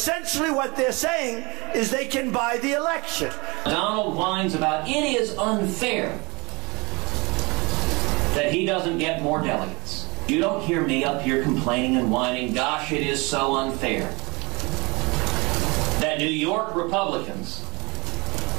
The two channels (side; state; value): left; quieter; 26.1 dB